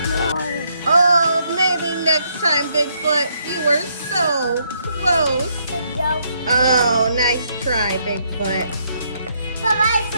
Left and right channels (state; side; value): inverted; both; correlation -0.73